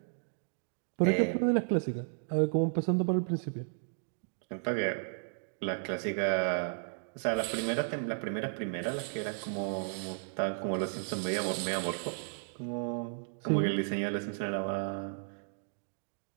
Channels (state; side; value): silent; left; digital silence